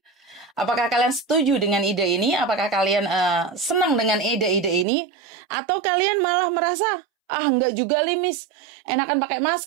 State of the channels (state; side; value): drops out; left; at 4.9 s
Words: Apakah kalian setuju dengan ide ini? Apakah kalian senang dengan ide-ide ini? Atau kalian malah merasa, enggak juga li, Miss. Enakan pakai